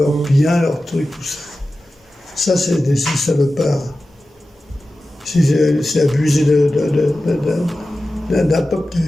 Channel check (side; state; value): both; normal; correlation 0.94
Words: biens, leurs trucs, tout ça. Ça, c'est des salopards. C'est abusé d'un peuple qui